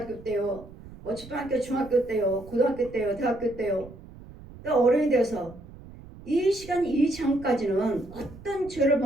때요, 뭐 초등학교 중학교 때요, 고등학교 때요, 대학교 때요, 또 어른이 돼서 이 시간 이 장까지는 어떤 죄를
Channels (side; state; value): right; noise; rumble, 18 dB below the sound